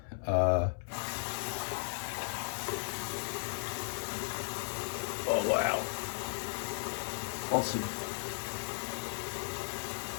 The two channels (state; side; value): silent; right; 54 dB below the other